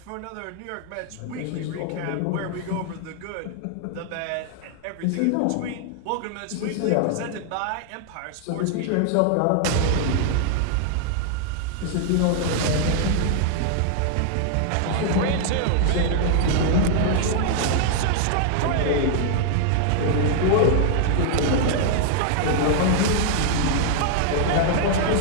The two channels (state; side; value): different; both; correlation 0.00